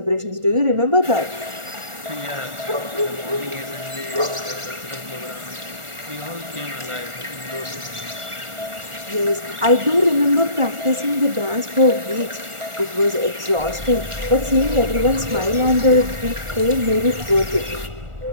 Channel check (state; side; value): late; left; 1.4 ms